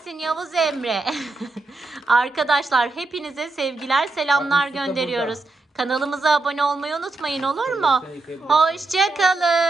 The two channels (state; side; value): quieter; left; 3.3 dB